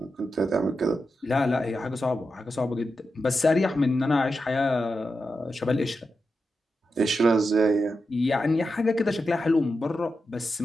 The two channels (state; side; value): normal; both; correlation 0.89